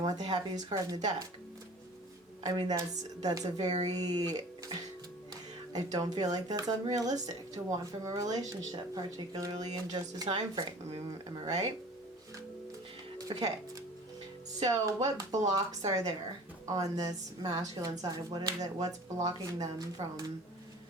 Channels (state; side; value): normal; both; correlation 0.44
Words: the happiest card in the deck. I mean, that's a very... I don't feel like that's unrealistic to want from a relationship, particularly in just a time frame. I mean, am I right? Okay. So what blocks are there on this masculine side? What's blocking them from,